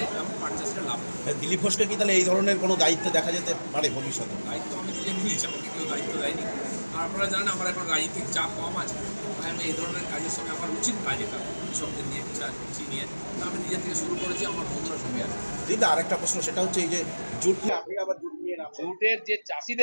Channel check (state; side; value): inverted; both; correlation -1.00